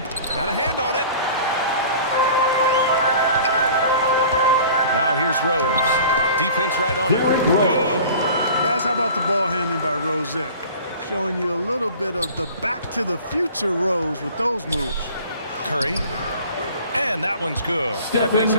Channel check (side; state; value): both; inverted; correlation -0.44